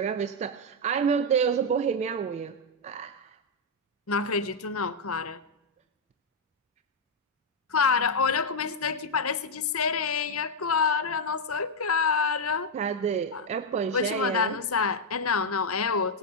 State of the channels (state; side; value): normal; both; correlation 0.00